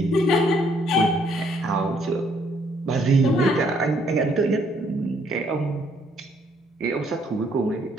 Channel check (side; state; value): both; normal; correlation 0.67